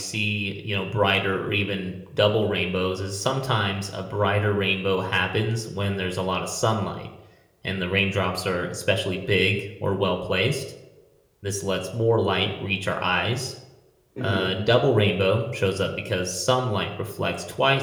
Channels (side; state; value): both; identical; correlation 1.00